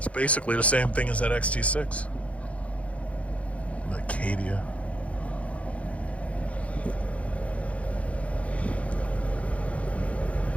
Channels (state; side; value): late; right; 0.064 ms